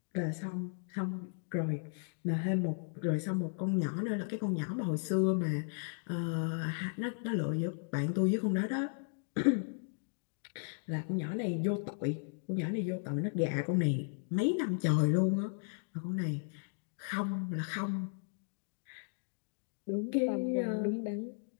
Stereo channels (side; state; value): right; silent; digital silence